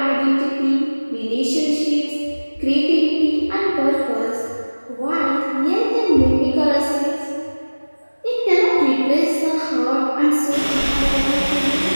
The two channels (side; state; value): both; inverted; correlation -1.00